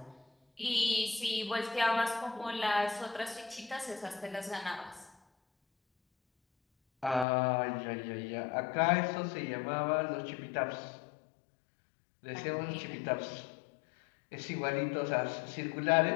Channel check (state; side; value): drops out; right; at 7.2 s